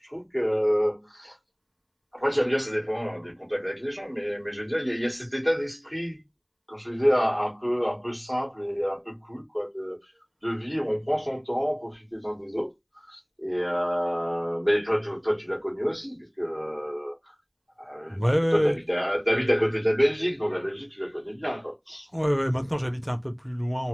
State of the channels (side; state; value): both; identical; correlation 1.00